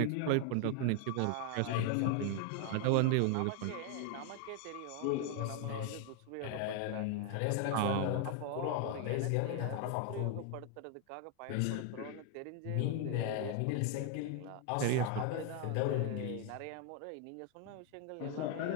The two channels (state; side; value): different; both; correlation 0.00